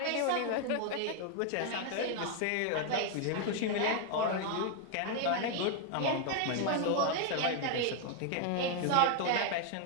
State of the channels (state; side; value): different; both; correlation 0.00